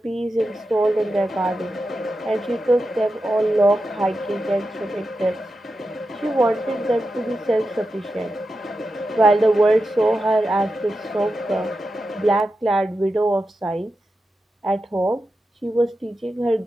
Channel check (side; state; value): both; normal; correlation 0.90